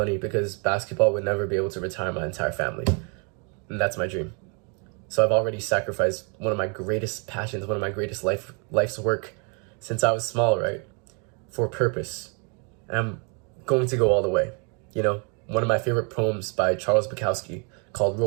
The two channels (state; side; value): quieter; left; 36.5 dB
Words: because basketball would never be able to retire my entire family. And that's my dream. So I've already sacrificed one of my greatest passions, one of my greatest life's work since I was small, right? For purpose. And I'm going to go all the way. You know, one of my favorite poems by Charles Bukowski called